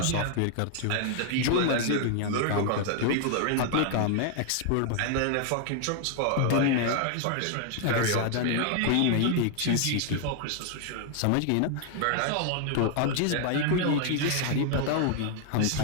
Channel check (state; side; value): different; both; correlation 0.00